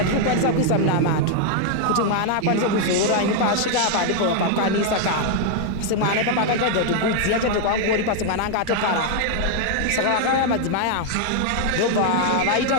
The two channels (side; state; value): both; different; correlation 0.00